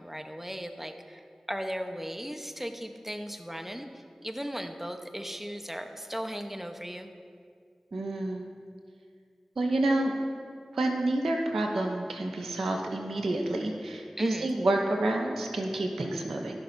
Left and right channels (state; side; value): normal; both; correlation 0.93